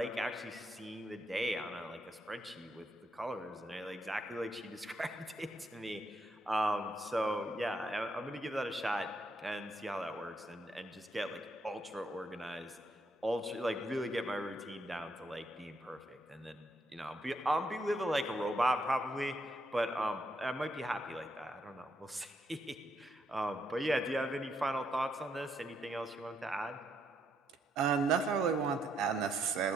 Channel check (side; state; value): both; normal; correlation 0.76